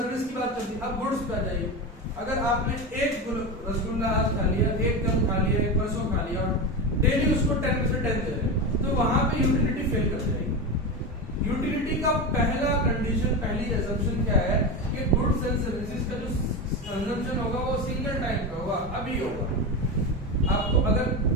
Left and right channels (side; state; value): both; normal; correlation 0.20